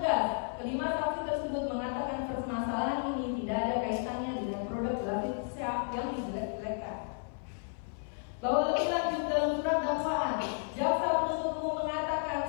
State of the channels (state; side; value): silent; right; 56 dB below the other